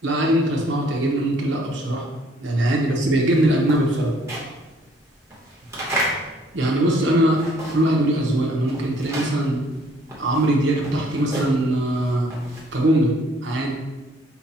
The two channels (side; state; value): both; normal; correlation 0.62